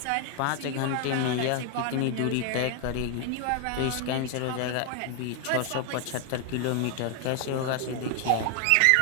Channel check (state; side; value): different; both; correlation 0.00